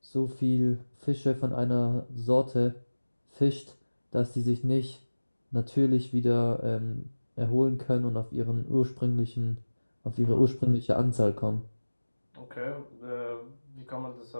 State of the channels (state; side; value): inverted; both; correlation -1.00